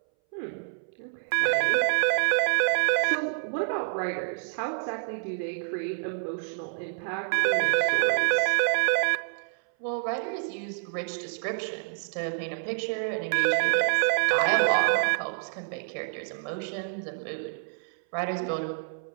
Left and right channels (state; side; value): silent; left; 60 dB below the other